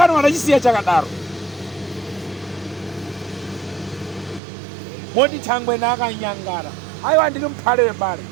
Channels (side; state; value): left; drops out; at 4.4 s